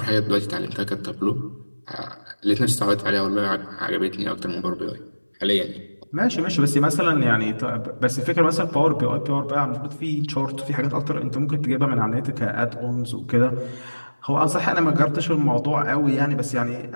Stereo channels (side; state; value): both; inverted; correlation -1.00